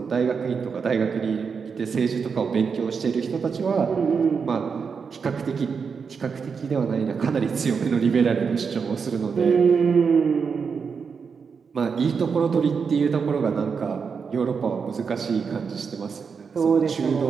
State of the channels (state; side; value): quieter; left; 5.8 dB